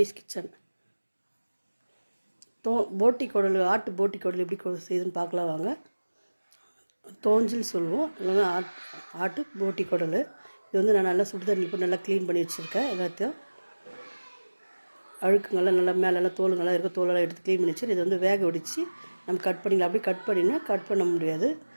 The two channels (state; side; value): inverted; both; correlation -1.00